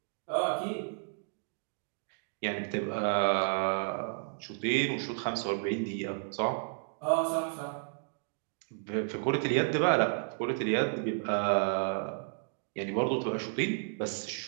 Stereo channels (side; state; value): left; silent; digital silence